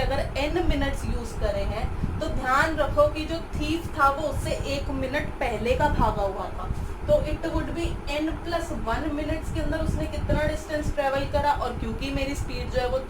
n मिनट्स यूज करे हैं तो ध्यान रखो कि जो थीफ था वो उससे 1 मिनट पहले का भागा हुआ था, तो it would B n+1 minutes के अंदर उसने कितना डिस्टेंस ट्रेवल करा। और क्योंकि मेरी स्पीड जो है वो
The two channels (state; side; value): identical; both; correlation 1.00